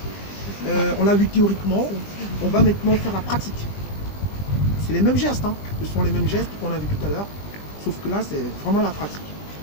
On l'a vu théoriquement, on va maintenant faire la pratique. C'est les mêmes gestes, hein. Ce sont les mêmes gestes qu'on a vu tout à l'heure, sauf que là c'est vraiment la pratique.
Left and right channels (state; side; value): late; right; 20 ms